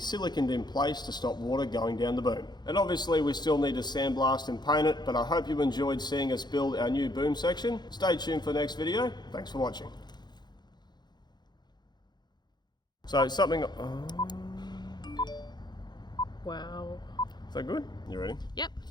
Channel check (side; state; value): right; late; 0.21 ms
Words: in place to stop water going down the boom. And obviously we still need to sandblast and paint it, but I hope you enjoyed seeing us build our new boom section. Stay tuned for the next video. Thanks for watching. So something... Wow. Is that good? You ready? Yep.